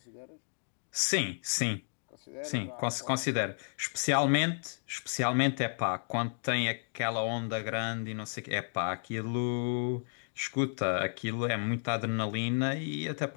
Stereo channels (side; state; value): right; silent; digital silence